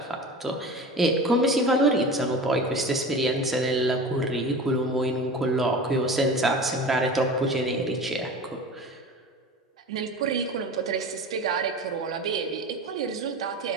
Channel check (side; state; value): both; normal; correlation 0.34